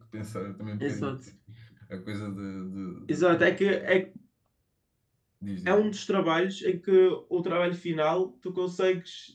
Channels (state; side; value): identical; both; correlation 1.00